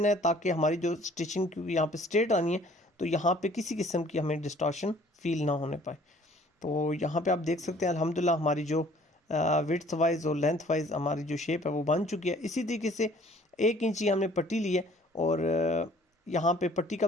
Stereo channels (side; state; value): both; normal; correlation 0.55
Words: है ताकि हमारी जो स्टिचिंग की यहाँ पे स्ट्रेट आनी है तो यहाँ पे किसी किस्म की हमें डिस्टॉर्शन फील ना होने पाए। तो यहाँ पे आप देख सकते हैं अल्हम्दुलिल्लाह हमारी जो विड्थ वाइज और लेंथ वाइज हमारी जो शेप है वो बन चुकी है। इसी तरीके से 1 इंच ही हमने पट्टी ली है और यहाँ पे पट्टी का